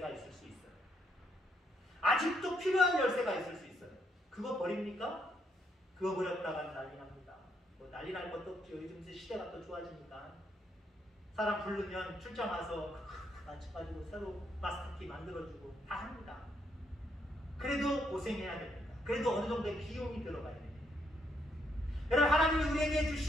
있을 수 있어요. 아직도 필요한 열쇠가 있을 수 있어요. 그거 버립니까? 그거 버렸다가 난리 납니다. 뭐 난리 날 것도 없죠. 요즘 시대가 또 좋아지니까. 사람 부르면 출장 와서 맞춰가지고 새로 마스터키 만들어주고 다 합니다. 그래도 고생해야 됩니다. 그래도 어느 정도의 비용이 들어가야 됩니다. 여러분 하나님이 우리에게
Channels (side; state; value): both; normal; correlation 0.75